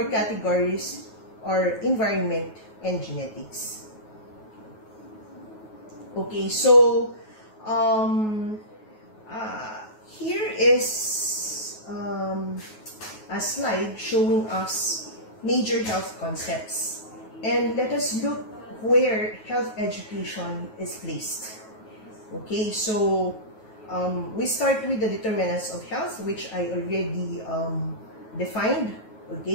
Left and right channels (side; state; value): right; late; 9.3 ms